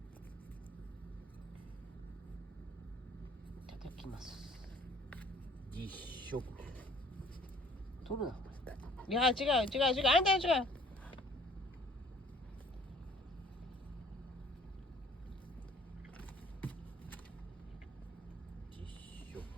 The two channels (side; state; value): both; normal; correlation 0.55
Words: いただきます。実食。取るな。いや違うあんた違う。実食。